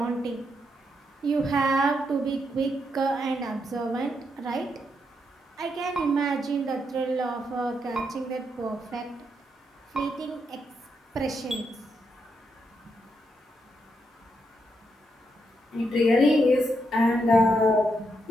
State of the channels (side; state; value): both; normal; correlation 0.80